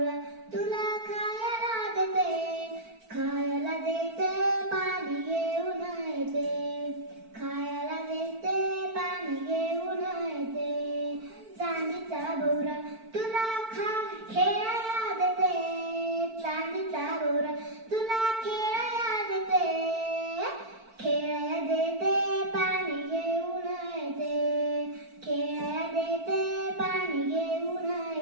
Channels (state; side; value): late; left; 4.5 ms